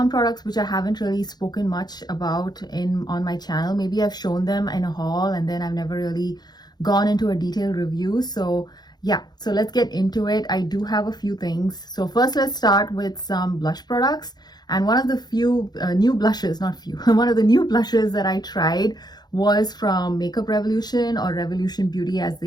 products which I haven't really spoken much about on my channel. Maybe I've shown them in a haul and then I've never really gone into a detailed review. So yeah, so let's get into it. I do have a few things. So first, let's start with some blush products. And one of the few new blushes, not few, one of the new blushes that I tried was from Makeup Revolution, or Revolution Beauty as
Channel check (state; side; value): late; right; 0.20 ms